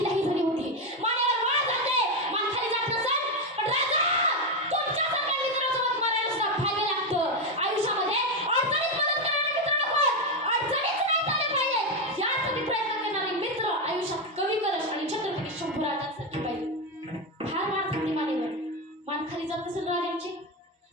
लाही झाली होती, मानेवर वाळ जाते, मान खाली जात नसेल. पण राजा, तुमच्यासारख्या मित्रासोबत मरायला सुद्धा भाग्य लागतं. आयुष्यामध्ये अडचणीत मदत करणारे मित्र नको, अडचणीच नाही झाले पाहिजे यासाठी प्रयत्न करणारे मित्र आयुष्यात कवी कलश आणि छत्रपती शंभूराजांसारखे पाहिजे. फार वाळ जाते मानेवर, मान खाली जात नसेल राजांची.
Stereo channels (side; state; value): both; normal; correlation 0.09